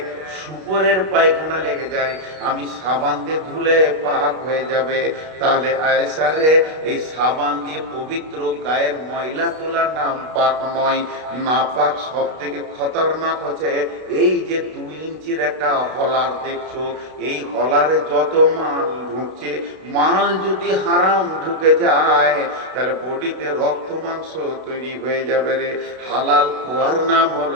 শুকরের পায়খানা লেগে যায়, আমি সাবান দিয়ে ধুলে পাক হয়ে যাবে। তাহলে আয়েশা রে, এই সাবান দিয়ে পবিত্র গায়ের ময়লা তোলার নাম পাক নয়। না পাক সব থেকে খতরনাক হচ্ছে এই যে 2 ইঞ্চির একটা হলার দেখছো, এই হলারে যত মাল ঢুকছে, মাল যদি হারাম ঢুকে যায় তাহলে বডিতে রক্ত মাংস তৈরি হয়ে যাবে রে। হালাল খোয়ার নাম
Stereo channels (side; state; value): left; late; 32 ms